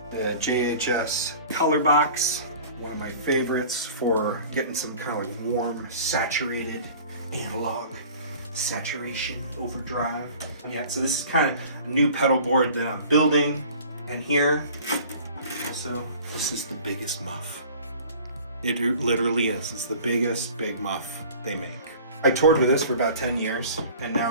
The JHS color box, one of my favorites for getting some kind of like warm, saturated analog saturation overdrive. Yeah, so this is kind of a new pedal board that I'm building. And here, also, this is the biggest muff. It literally is. It's the biggest big muff they make. I toured with this for about 10 years, and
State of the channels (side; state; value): both; inverted; correlation -0.45